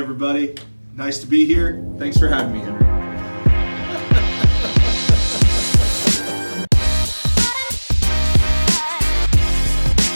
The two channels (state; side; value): inverted; both; correlation -1.00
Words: nice to be here. Thanks for having me, Henry.